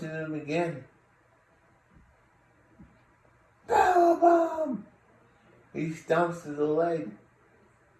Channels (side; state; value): both; identical; correlation 1.00